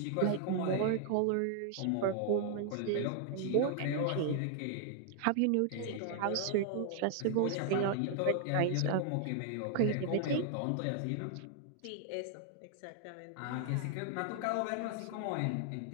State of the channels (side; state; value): both; different; correlation 0.00